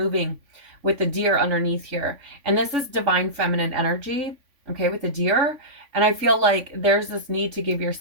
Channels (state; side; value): late; left; 3.5 ms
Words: with the deer underneath here. And this is divine feminine energy, okay, with the deer. And I feel like there's this need to give